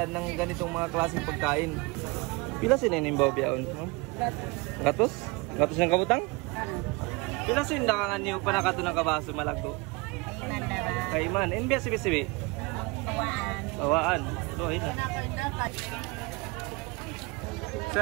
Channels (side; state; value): left; quieter; 26.2 dB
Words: ng ganitong mga klaseng pagkain. Pila sinenimbaw biyaon? Gatos? Gatos ng kabutang? Pila sindakangan niyo pa nakato ng kabaso malagdo? Kaiman. NBS sibi-sibi? Bawaan. So